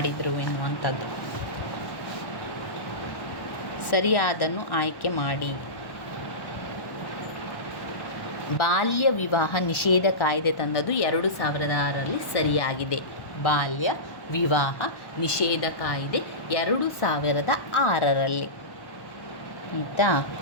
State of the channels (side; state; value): right; late; 1.1 ms